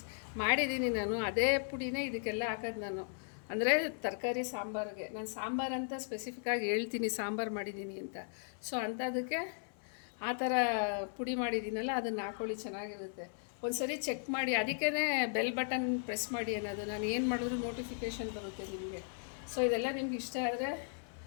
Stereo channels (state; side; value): silent; right; 53 dB below the other